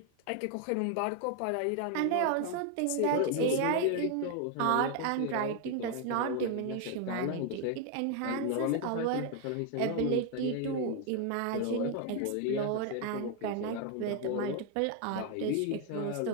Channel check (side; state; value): both; different; correlation 0.01